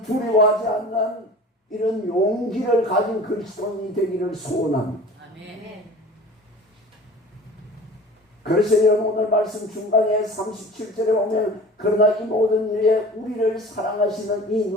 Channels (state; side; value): normal; both; correlation 0.40